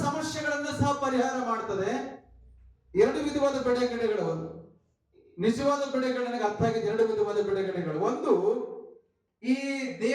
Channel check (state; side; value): identical; both; correlation 1.00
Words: ಸಮಸ್ಯೆಗಳನ್ನ ಸಹ ಪರಿಹಾರ ಮಾಡ್ತದೆ. 2 ವಿಧವಾದ ಬಿಡುಗಡೆಗಳು, ನಿಜವಾದ ಬಿಡುಗಡೆ ನನಗೆ ಅರ್ಥ ಆಗಿದೆ. 2 ವಿಧವಾದ ಬಿಡುಗಡೆಗಳು. ಒಂದು, ಈ